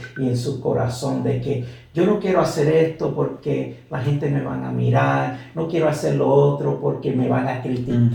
y en su corazón de que yo no quiero hacer esto porque la gente me van a mirar, no quiero hacer lo otro porque me van a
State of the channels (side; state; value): both; identical; correlation 1.00